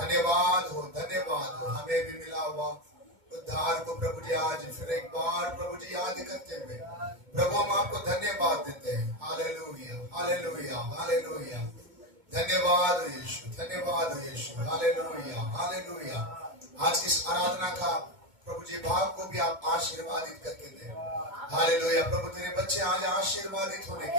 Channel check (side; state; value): left; late; 2.2 ms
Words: हो, धन्यवाद हो। हमें भी मिला हुआ उद्धार को प्रभु जी आज फिर एक बार प्रभु जी याद करते हुए प्रभु हम आपको धन्यवाद देते हैं। Hallelujah, hallelujah, hallelujah. धन्यवाद यीशु, धन्यवाद यीशु। Hallelujah, hallelujah. आज की इस आराधना का प्रभु जी भाव को भी आप आशीर्वादित करके दें। हालेलुया। प्रभु तेरे बच्चे आज आशीर्वादित होने